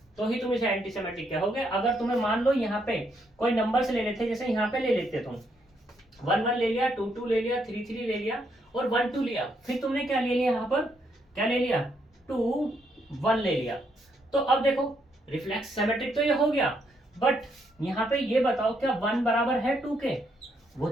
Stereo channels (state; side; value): normal; both; correlation 0.75